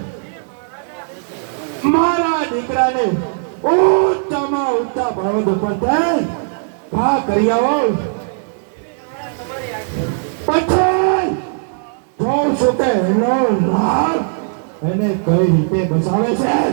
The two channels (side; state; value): left; silent; digital silence